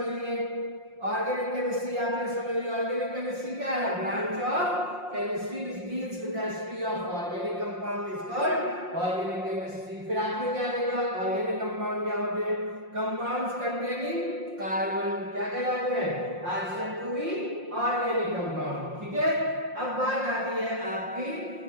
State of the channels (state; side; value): late; left; 5.6 ms